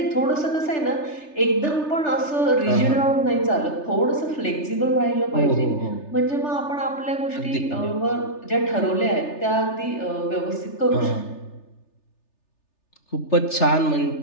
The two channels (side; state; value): right; late; 3.3 ms